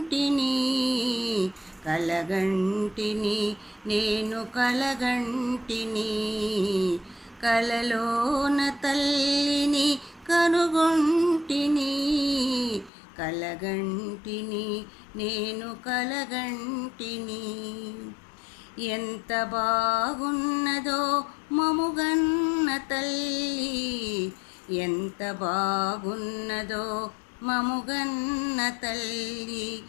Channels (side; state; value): right; drops out; at 12.9 s